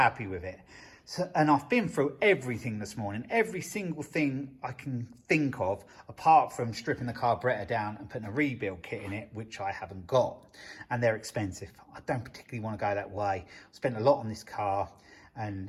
with it. So, and I've been through everything this morning, every single thing I can think of, apart from stripping the carburettor down and putting a rebuild kit in it, which I haven't got, and they're expensive. I don't particularly want to go that way. I spent a lot on this car,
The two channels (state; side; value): identical; both; correlation 1.00